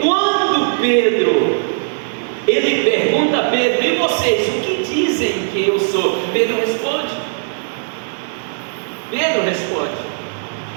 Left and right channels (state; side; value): silent; left; digital silence